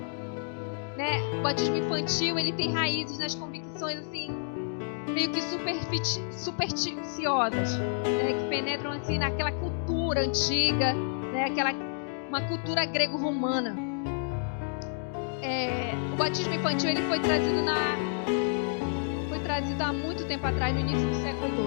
Né? O batismo infantil, ele tem raízes nas convicções assim, meio que supersticiosas, né? Que penetram assim naquela cultura antiga, né? Uma cultura grego-romana. O batismo infantil, ele foi trazido há muito tempo atrás, no início do século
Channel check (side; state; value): right; silent; digital silence